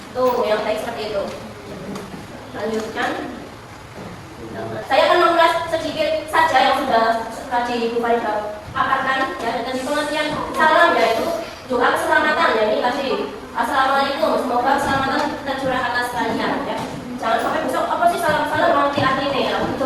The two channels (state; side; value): identical; both; correlation 1.00